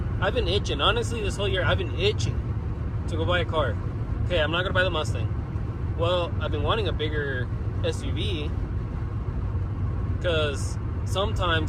I've been itching. Honestly, this whole year, I've been itching to go buy a car. Okay, I'm not gonna buy the Mustang. Well, I've been wanting a bigger SUV because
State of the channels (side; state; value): both; identical; correlation 1.00